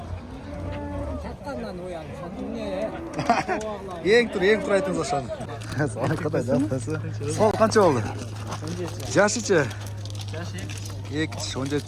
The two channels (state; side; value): identical; both; correlation 1.00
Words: Çattandan uyan. Sen ne? Yeng tur aytыңыз aşağı. Sana kadar da atası. Sol kança oldu? Yaşıçı. Yaşı.